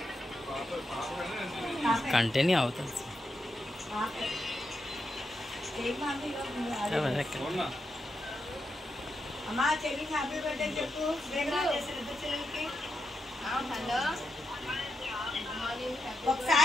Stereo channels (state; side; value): normal; both; correlation 0.85